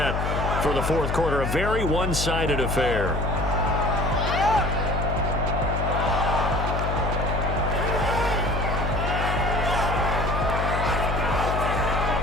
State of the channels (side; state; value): left; noise; hum, 1 dB below the sound